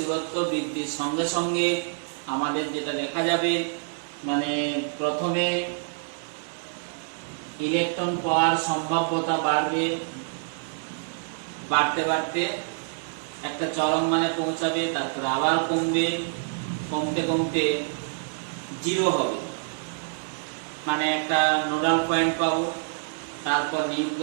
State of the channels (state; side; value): silent; left; digital silence